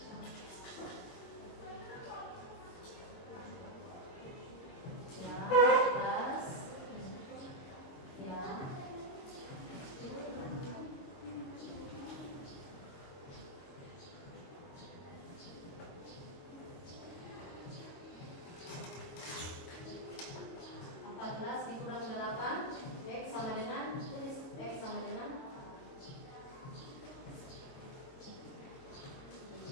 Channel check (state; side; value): late; right; 22 ms